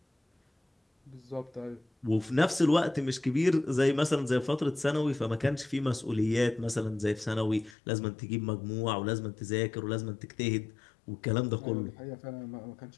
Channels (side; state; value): right; drops out; at 7.8 s